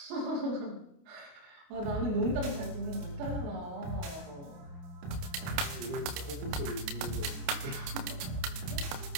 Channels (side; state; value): left; late; 28 ms